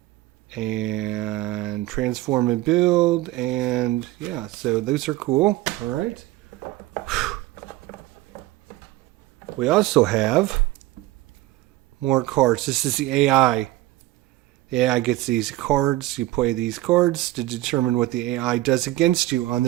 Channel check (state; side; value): quieter; left; 17.1 dB